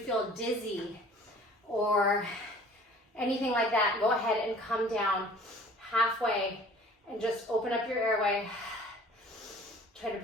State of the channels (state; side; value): normal; both; correlation 0.49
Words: dizzy or anything like that, go ahead and come down halfway and just open up your airway. Try to